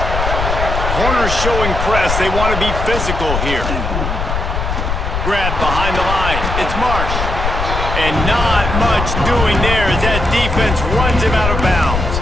Corners showing press. They want to be physical here. Grab behind the line. It's Marsh. And not much doing there as that defense runs him out of bounds.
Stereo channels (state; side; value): noise; left; rumble, 2 dB below the sound